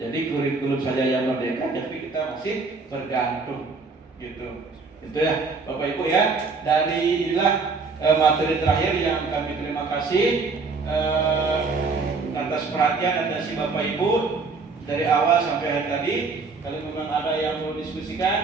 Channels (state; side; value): quieter; left; 4.3 dB